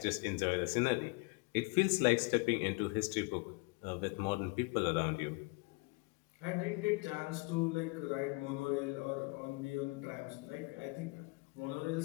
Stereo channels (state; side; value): quieter; right; 28.5 dB